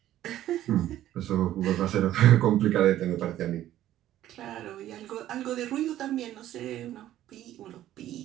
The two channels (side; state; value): left; quieter; 13.0 dB